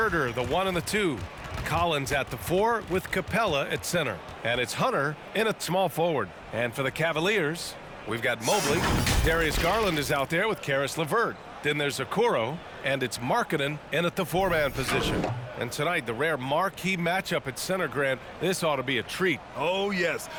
the 1 and the 2. Collins at the 4 with Capella at center. And it's Hunter in at small forward. And for the Cavaliers, we've got Mobley. Darius Garland is out there with Caris LeVert. Then there's Okoro, and it's Markkanen in at the 4-man position. And tonight, the rare marquee matchup at center, Grant. This ought to be a treat. Oh, yes.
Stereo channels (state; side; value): identical; both; correlation 1.00